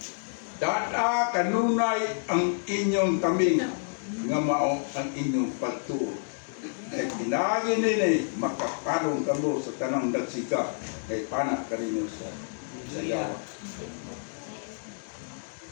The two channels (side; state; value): right; silent; digital silence